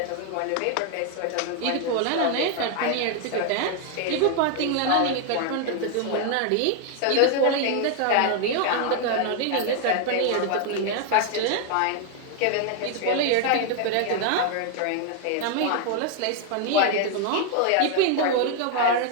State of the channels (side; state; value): both; different; correlation 0.00